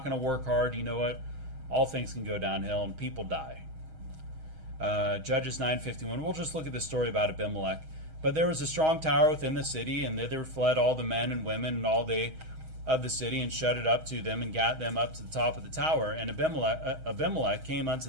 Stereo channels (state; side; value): late; left; 6.3 ms